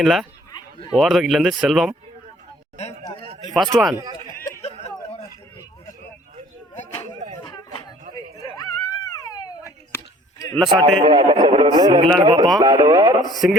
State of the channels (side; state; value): both; normal; correlation 0.54